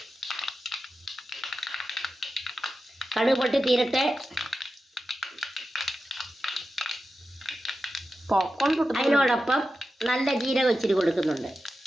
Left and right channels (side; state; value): both; normal; correlation 0.92